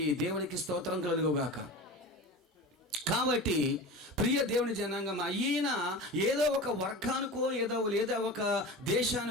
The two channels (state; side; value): normal; both; correlation 0.31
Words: దేవునికి స్తోత్రం కలుగుగాక. కాబట్టి ప్రియ దేవుని జనాంగం, ఈయన ఏదో ఒక వర్గానికో లేదా ఒక